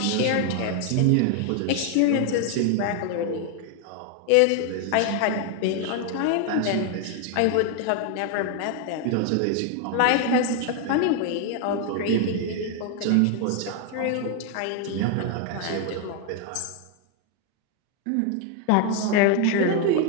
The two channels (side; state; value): both; different; correlation 0.01